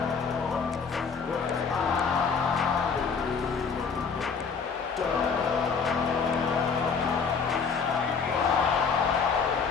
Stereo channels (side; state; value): right; quieter; 5.6 dB